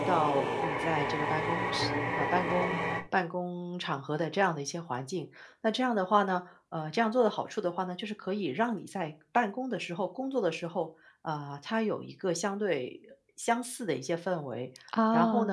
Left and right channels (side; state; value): both; identical; correlation 1.00